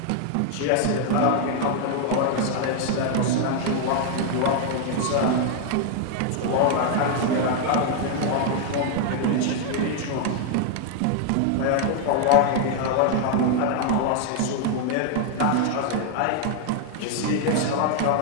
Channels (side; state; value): both; different; correlation 0.00